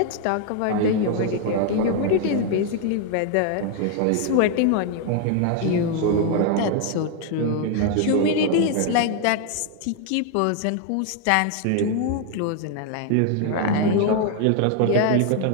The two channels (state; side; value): different; both; correlation 0.00